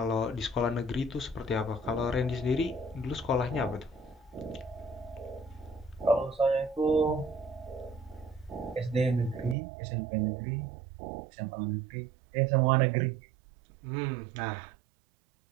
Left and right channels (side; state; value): left; drops out; at 9.6 s